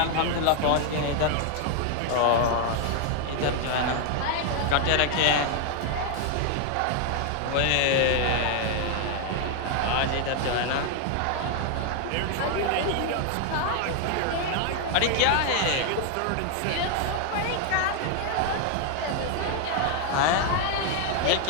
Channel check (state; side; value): different; both; correlation 0.00